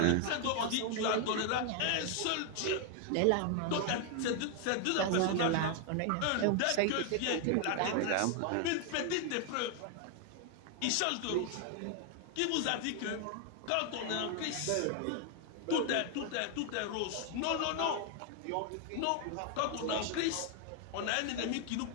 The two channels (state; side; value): different; both; correlation 0.00